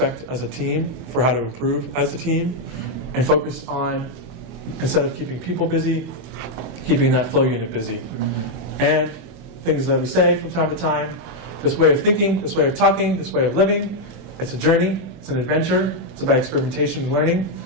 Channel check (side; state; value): left; late; 24 ms